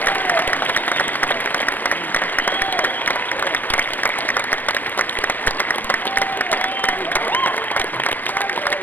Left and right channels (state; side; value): late; right; 0.085 ms